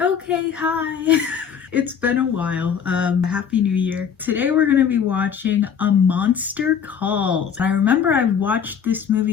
Okay, hi. It's been a while. Happy New Year. Today we're gonna be watching A Monster Calls. I remember I watched this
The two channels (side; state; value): right; quieter; 7.5 dB